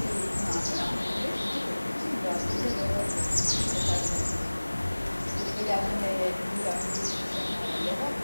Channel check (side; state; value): both; inverted; correlation -1.00